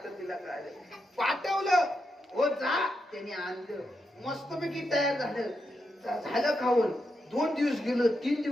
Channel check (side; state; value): both; normal; correlation 0.85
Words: तिला कळालं. पाठवलं, हो जा, त्याने आणलं, मस्तपैकी तयार झालं खाऊन. 2 दिवस गेलं, 3